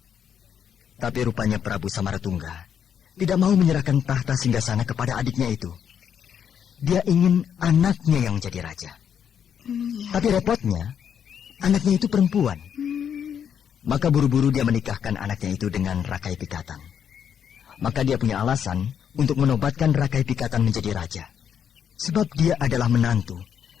Tapi rupanya Prabu Samaratungga tidak mau menyerahkan tahta singgasana kepada adiknya itu. Dia ingin anaknya yang menjadi raja. Tapi repotnya, anaknya itu perempuan. Maka buru-buru dia menikahkan anaknya itu dengan Rakai Pikatan. Maka dia punya alasan untuk menobatkan Rakai Pikatan menjadi raja. Sebab dia adalah menantu,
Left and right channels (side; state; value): right; quieter; 8.3 dB